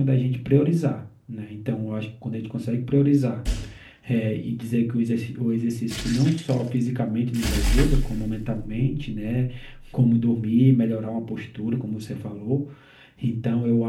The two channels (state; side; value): identical; both; correlation 1.00